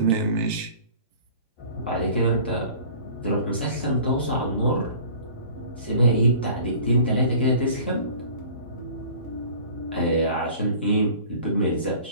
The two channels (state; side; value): inverted; both; correlation -0.46